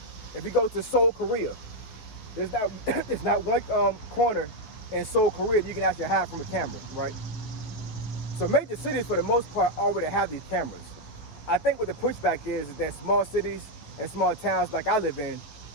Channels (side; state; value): right; late; 13 ms